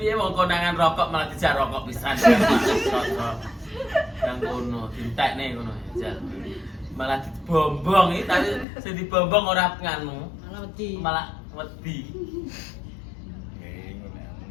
ya mau konangan rokok malah dijak rokok pisan. Rokok. Yang kono, dintek nih kono ya. Malah dibombong iki tadi sing dibombong ora nganu, Malah wedi. malah wedi. Ngono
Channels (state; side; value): drops out; right; at 8.7 s